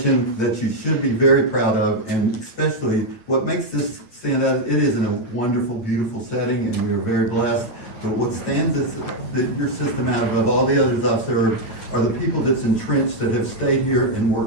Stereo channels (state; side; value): late; right; 8.9 ms